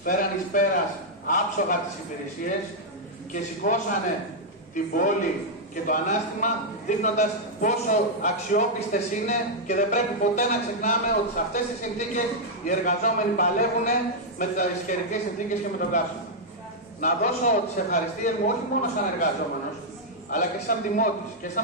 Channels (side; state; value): both; normal; correlation -0.04